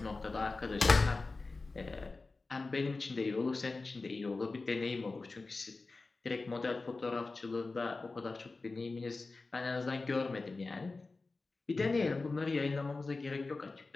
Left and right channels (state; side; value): quieter; right; 3.7 dB